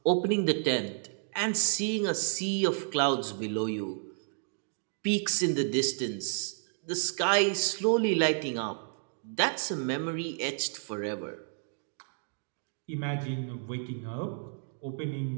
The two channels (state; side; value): silent; left; digital silence